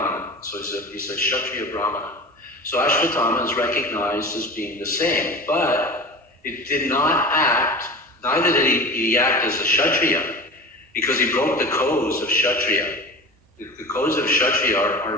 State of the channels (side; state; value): both; normal; correlation 0.34